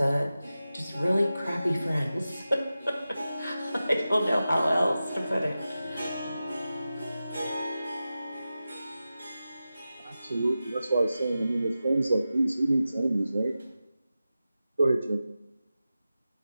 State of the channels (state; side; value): inverted; both; correlation -0.93